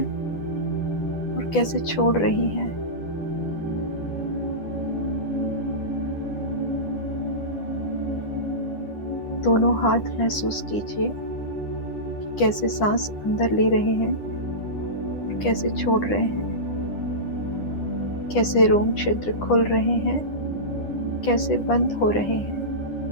और कैसे छोड़ रही हैं। दोनों हाथ महसूस कीजिए कि कैसे सांस अंदर ले रहे हैं और कैसे छोड़ रहे हैं। कैसे रोम छिद्र खुल रहे हैं, कैसे बंद हो रहे हैं।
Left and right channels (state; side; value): late; right; 10 ms